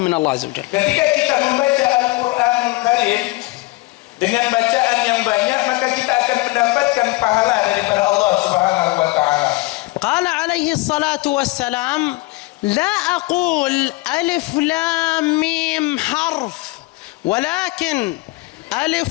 من الله عز وجل. Ketika kita membaca Al-Quran Karim dengan bacaan yang banyak, maka kita akan mendapatkan pahala daripada Allah Subhanahu wa taala. قال عليه الصلاة والسلام لا أقول ألف لام ميم حرف ولكن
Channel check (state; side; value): quieter; right; 21.9 dB